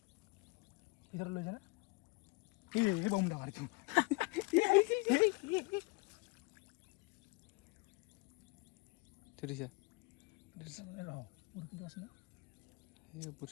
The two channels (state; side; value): quieter; right; 26.3 dB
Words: ভিতৰত লৈ যায় না বম ডাঙৰ এইটো ধৰিছে বৰশীটো আছে না এই